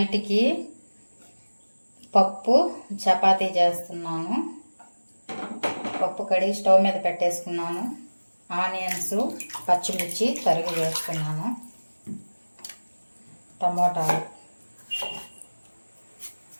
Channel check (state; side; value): inverted; both; correlation -1.00